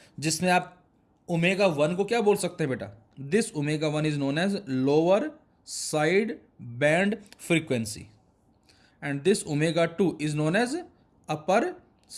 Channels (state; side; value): identical; both; correlation 1.00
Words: जिसमें आप ओमेगा 1 को क्या बोल सकते हैं बेटा, this omega 1 is known as lower side band frequency and this omega 2 is known as upper